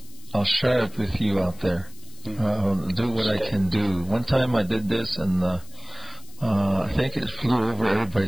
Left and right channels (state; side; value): noise; left; hiss, 22 dB below the sound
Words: I'll share it with you out there. I'll do what I can do. One time I did this, and I think it flew over